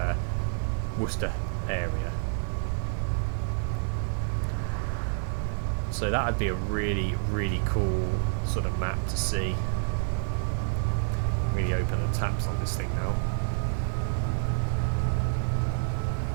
Worcester area. So that would be a really, really cool sort of map to see. Really open the taps on this thing now.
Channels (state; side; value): silent; left; digital silence